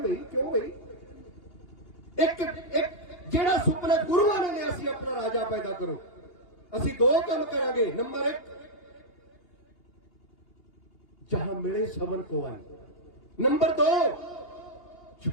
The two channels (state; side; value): late; right; 2.8 ms